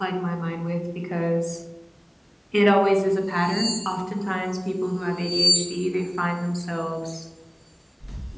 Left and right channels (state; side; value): identical; both; correlation 1.00